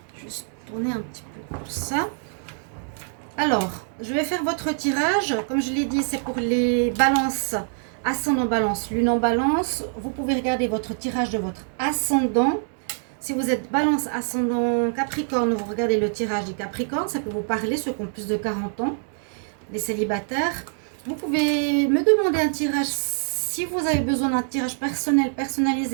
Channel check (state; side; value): silent; left; 61 dB below the other